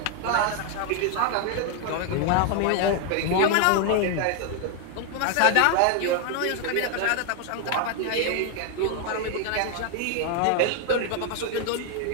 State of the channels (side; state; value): both; different; correlation 0.01